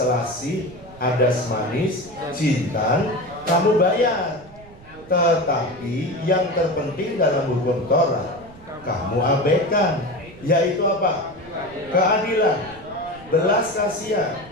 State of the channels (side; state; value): right; noise; rumble, 21 dB below the sound